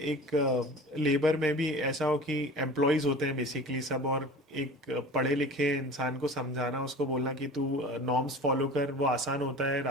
एक लेबर में भी ऐसा हो कि एम्प्लॉयज होते हैं बेसिकली सब, और एक पढ़े लिखे इंसान को समझाना, उसको बोलना कि तू नॉर्म्स फॉलो कर, वो आसान होता है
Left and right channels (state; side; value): normal; both; correlation 0.39